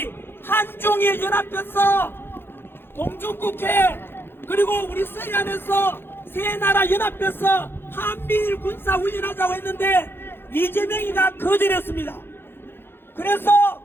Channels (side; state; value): right; late; 0.10 ms